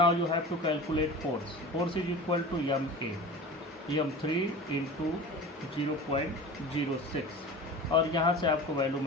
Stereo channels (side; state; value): both; normal; correlation 0.35